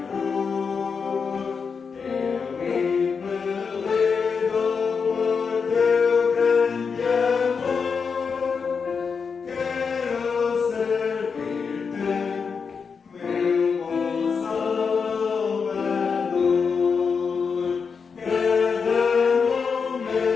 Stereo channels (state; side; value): quieter; right; 5.6 dB